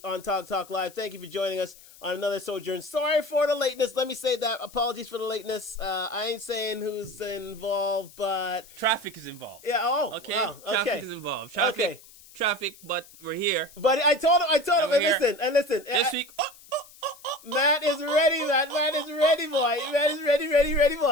on Talk Live. Thank you for joining us on another sojourn. Sorry for the lateness. Let me say that. Apologies for the lateness. I ain't saying who's involved, but Traffic is involved. yeah. Oh, Okay. wow, okay. Traffic is involved. Traffic, but we're here. But I told him. And listen. This week. Matt is ready, man. Matt is ready, boy. Matt is ready,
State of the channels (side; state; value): left; noise; hiss, 22 dB below the sound